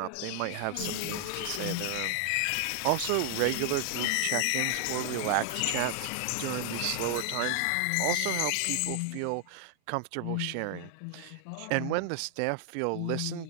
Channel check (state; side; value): different; both; correlation 0.00